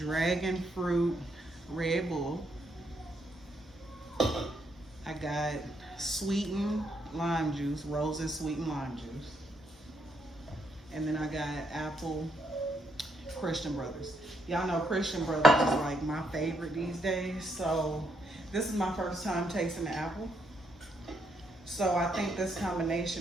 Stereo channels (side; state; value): both; normal; correlation 0.75